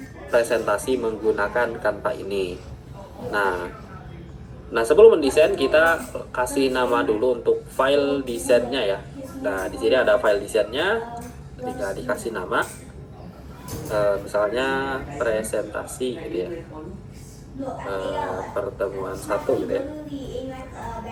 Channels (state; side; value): identical; both; correlation 1.00